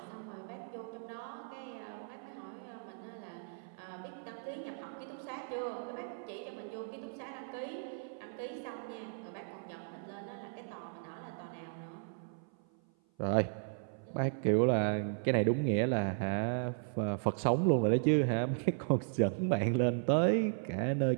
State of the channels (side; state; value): left; silent; 54 dB below the other